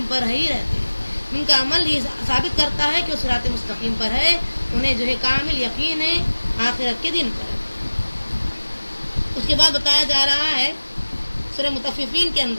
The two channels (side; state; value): both; inverted; correlation -1.00